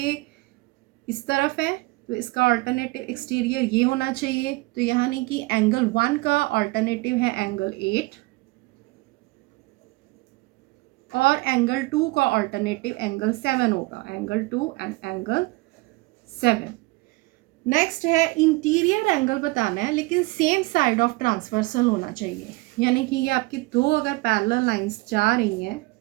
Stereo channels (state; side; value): quieter; left; 23.0 dB